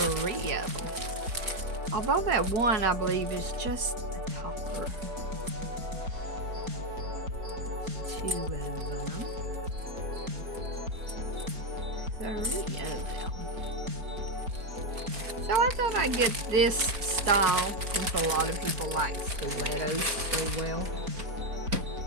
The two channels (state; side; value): late; left; 4.3 ms